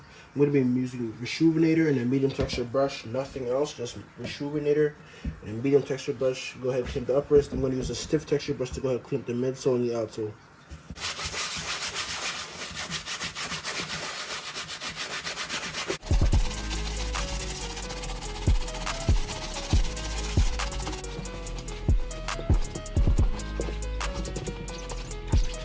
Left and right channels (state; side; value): identical; both; correlation 1.00